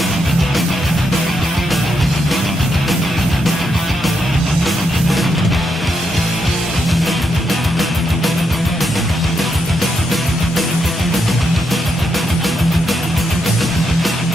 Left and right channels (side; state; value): both; normal; correlation 0.81